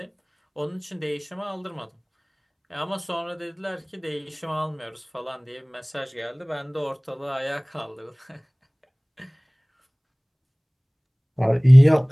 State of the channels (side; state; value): both; identical; correlation 1.00